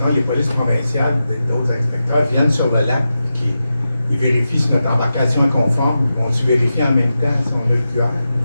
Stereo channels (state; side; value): inverted; both; correlation -0.91